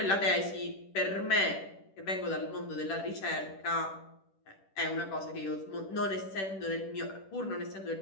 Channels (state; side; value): late; right; 10 ms